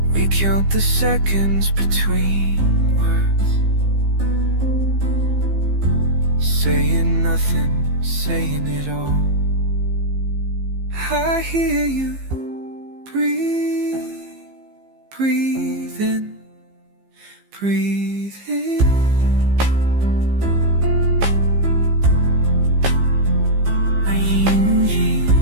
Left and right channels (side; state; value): left; late; 15 ms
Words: We count the seconds between words, saying nothing, saying it all. I hear you breathe, breathing, breathing.